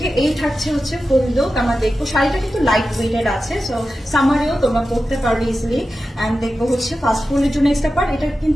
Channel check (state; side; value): normal; both; correlation 0.92